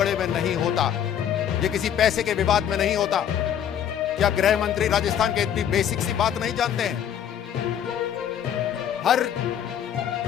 में नहीं होता, ये किसी पैसे के विवाद में नहीं होता। क्या गृह मंत्री राजस्थान के इतनी बेसिक सी बात नहीं जानते हैं?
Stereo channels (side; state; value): right; quieter; 9.4 dB